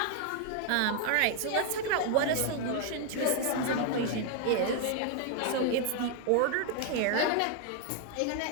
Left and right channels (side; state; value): both; different; correlation 0.00